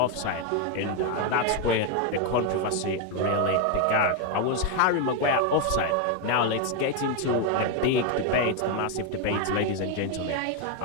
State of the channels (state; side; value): different; both; correlation 0.01